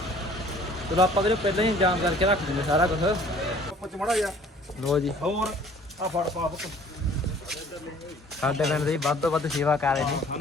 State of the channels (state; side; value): normal; both; correlation 0.53